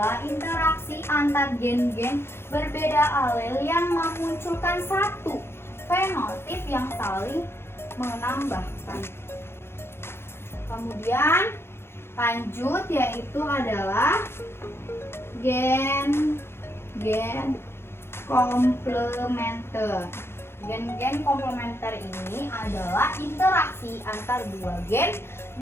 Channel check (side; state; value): right; late; 0.12 ms